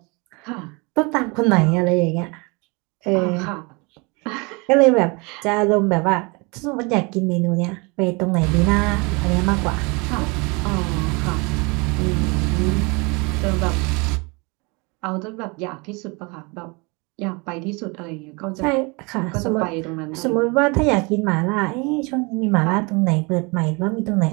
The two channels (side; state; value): left; quieter; 28.8 dB